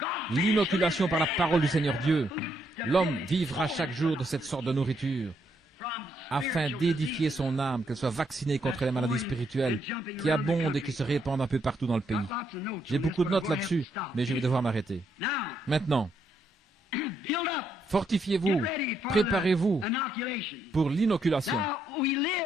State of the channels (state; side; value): normal; both; correlation 0.76